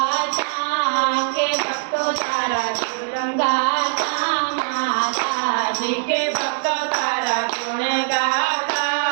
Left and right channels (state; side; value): silent; left; 65 dB below the other